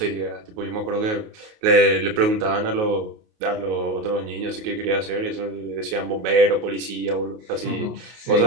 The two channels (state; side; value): late; left; 28 ms